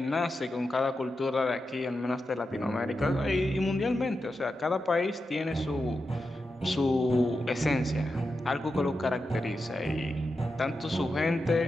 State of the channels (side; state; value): both; normal; correlation 0.89